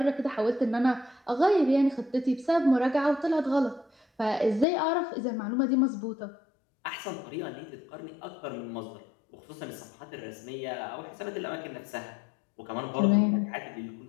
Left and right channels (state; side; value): drops out; right; at 4.7 s